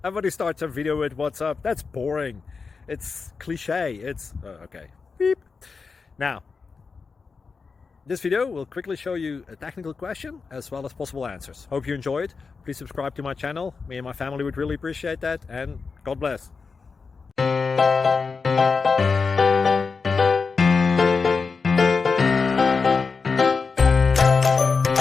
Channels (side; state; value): right; quieter; 4.9 dB